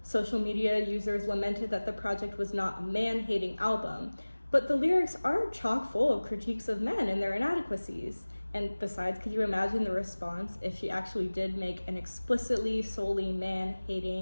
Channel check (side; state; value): both; inverted; correlation -1.00